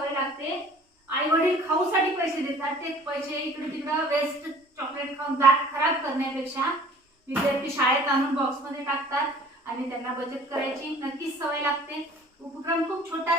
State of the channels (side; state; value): both; normal; correlation 0.50